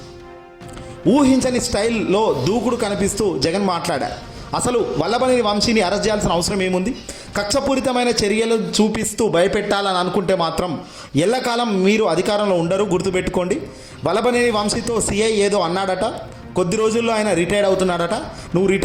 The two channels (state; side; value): identical; both; correlation 1.00